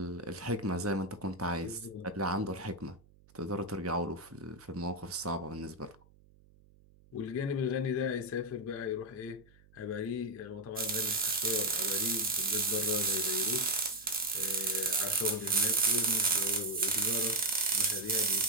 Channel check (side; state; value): right; noise; hum, 28 dB below the sound